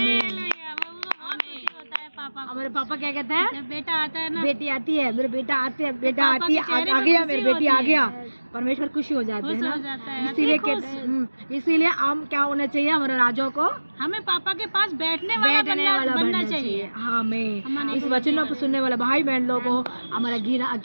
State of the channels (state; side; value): inverted; both; correlation -1.00